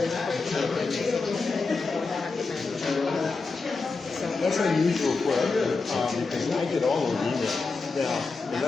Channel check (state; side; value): quieter; right; 4.1 dB